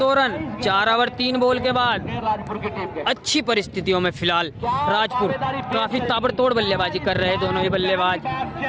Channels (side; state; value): both; identical; correlation 1.00